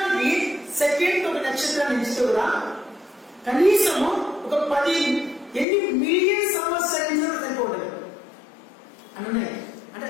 సెకండ్ ఒక నక్షత్రాన్ని ఎంచితే కూడా కనీసము ఒక 10 మిలియన్ సంవత్సరాలు సరిపోతుంది అని. అంటే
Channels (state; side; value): drops out; right; at 5.7 s